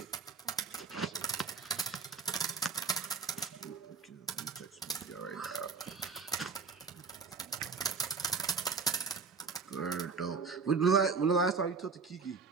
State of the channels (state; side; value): quieter; left; 5.0 dB